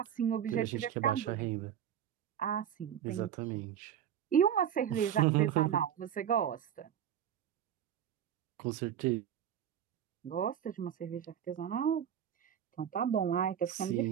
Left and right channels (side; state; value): left; quieter; 9.6 dB